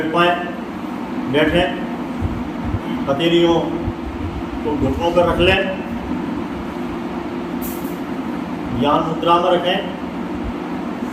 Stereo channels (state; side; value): identical; both; correlation 1.00